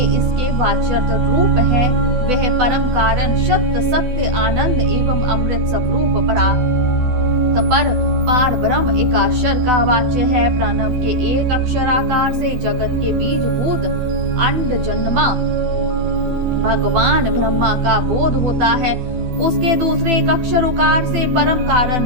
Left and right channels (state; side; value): late; left; 12 ms